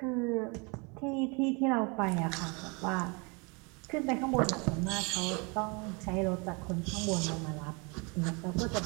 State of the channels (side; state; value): left; quieter; 30.6 dB